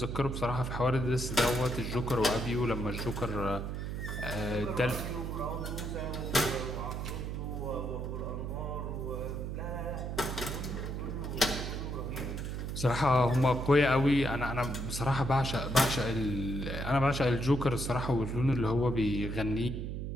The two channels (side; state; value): right; noise; hum, 4 dB below the sound